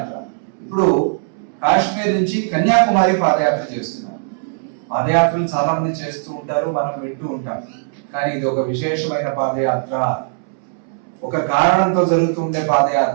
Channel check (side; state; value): left; silent; 66 dB below the other